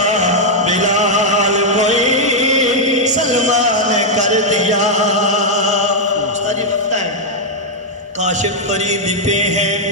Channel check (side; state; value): both; normal; correlation -0.02